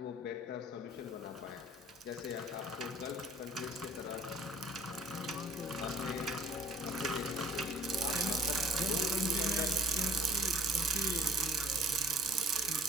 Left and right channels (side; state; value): both; normal; correlation 0.55